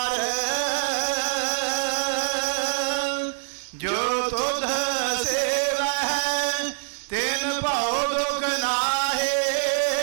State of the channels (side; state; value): left; silent; 62 dB below the other